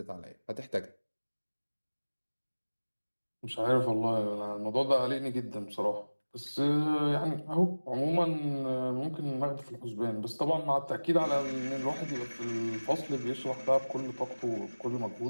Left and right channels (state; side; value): inverted; both; correlation -1.00